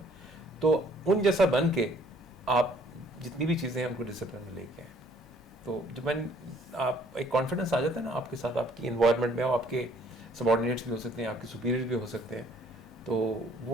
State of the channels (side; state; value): both; normal; correlation 0.60